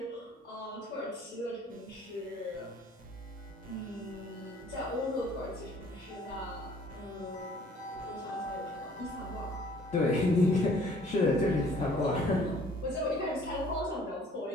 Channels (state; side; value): normal; both; correlation 0.55